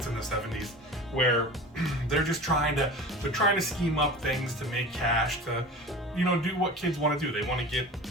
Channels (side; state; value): both; normal; correlation 0.36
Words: in the 70s, where they're just trying to scheme up things to make cash, to do what kids want to do. They want to